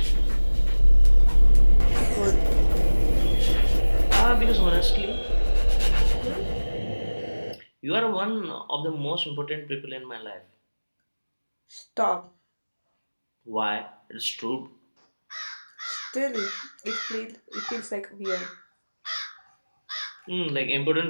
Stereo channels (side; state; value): both; inverted; correlation -1.00